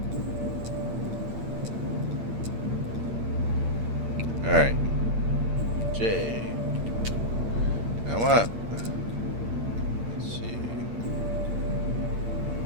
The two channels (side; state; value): left; late; 8.7 ms